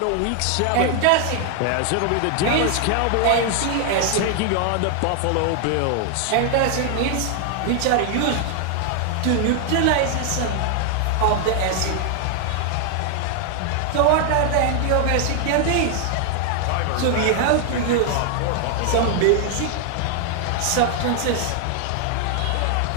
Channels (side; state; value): both; different; correlation 0.00